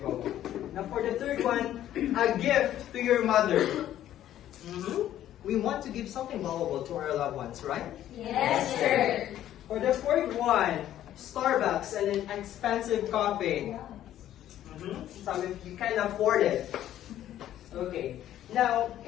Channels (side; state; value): right; quieter; 12.1 dB